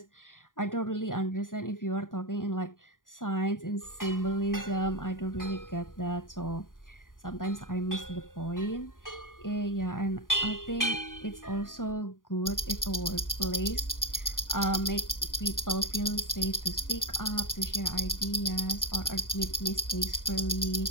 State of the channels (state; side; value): late; right; 0.89 ms